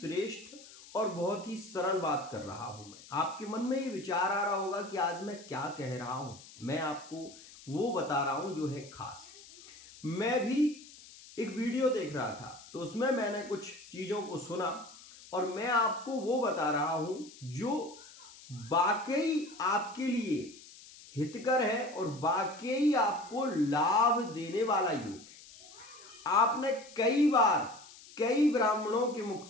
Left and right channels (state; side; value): noise; left; hiss, 19 dB below the sound